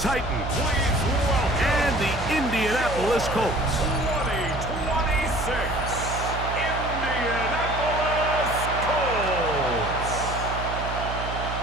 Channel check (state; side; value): noise; right; hum, 6 dB below the sound